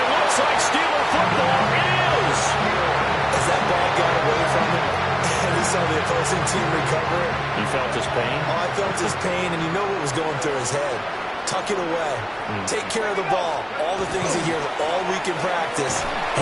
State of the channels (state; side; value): identical; both; correlation 1.00